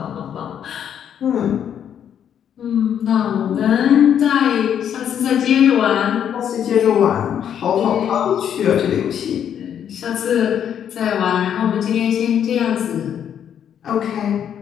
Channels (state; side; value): quieter; right; 9.1 dB